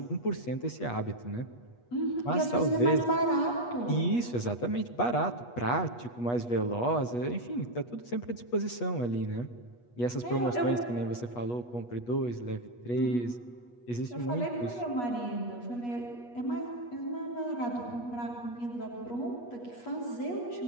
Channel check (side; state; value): right; late; 8.3 ms